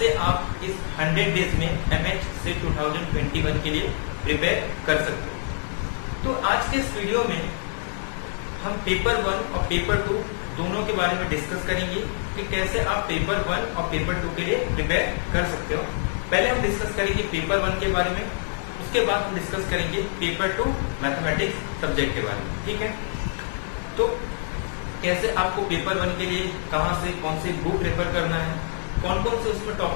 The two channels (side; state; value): right; silent; digital silence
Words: आप इस 100 डेज में एमएच से 2021 के लिए प्रिपेयर कर सकते हो। तो आज के इस वीडियो में हम पेपर 1 और पेपर 2 दोनों के बारे में डिस्कस करेंगे कि कैसे आप पेपर 1 और पेपर 2 के लिए प्रिपेयर कर सकते हो। पहले हम डिस्कस करेंगे पेपर 1 के बारे में, उसके बाद हम डिस्कस करेंगे पेपर 2 मैथमेटिक्स सब्जेक्ट के बारे में। ठीक है, तो कैसे आपको पेपर 1 के लिए कहां से कौन से बुक रेफर करना है, कौन कौन से उसमें